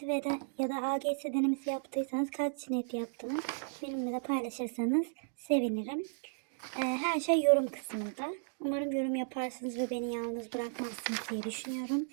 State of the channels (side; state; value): left; silent; digital silence